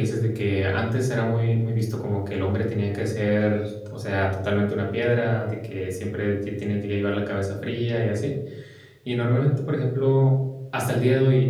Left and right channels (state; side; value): identical; both; correlation 1.00